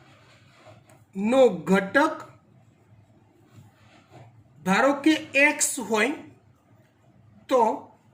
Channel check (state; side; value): identical; both; correlation 1.00